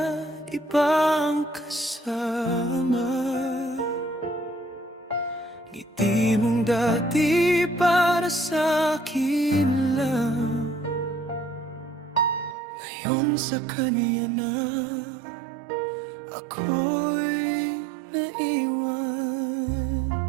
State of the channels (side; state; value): left; drops out; at 12.6 s